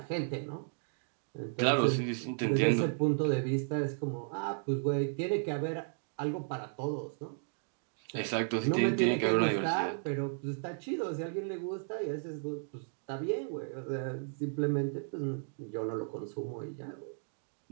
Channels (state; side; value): silent; left; digital silence